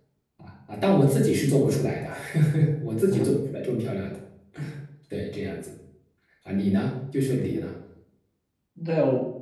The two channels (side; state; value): both; identical; correlation 1.00